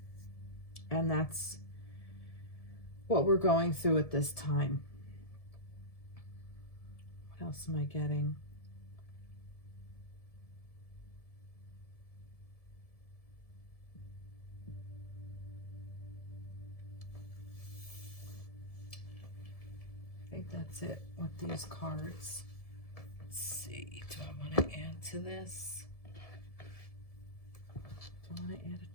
And that's what we're going through at this time. What else am I getting? I think that's it with these cards. Let's see. Do I want to add to this? Do I want to add a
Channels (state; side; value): late; right; 1.7 ms